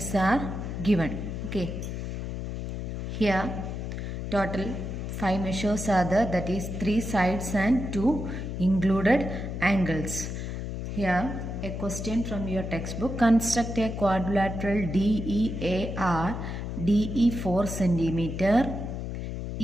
are given. Okay, here total 5 measures are there, that is 3 sides and 2 included angles. Here a question from your textbook: construct a quadrilateral DEAR, DE 4 cm,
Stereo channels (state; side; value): noise; left; hum, 5 dB below the sound